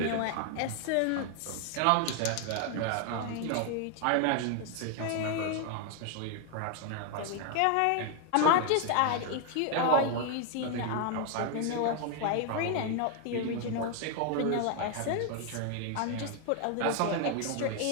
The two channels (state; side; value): different; both; correlation 0.00